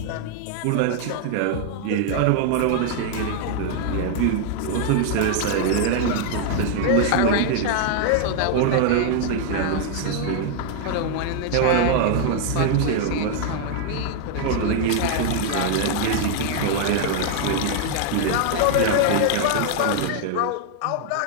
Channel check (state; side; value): different; both; correlation 0.00